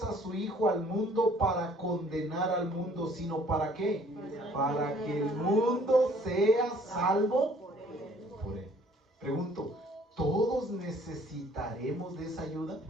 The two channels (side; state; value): both; normal; correlation 0.58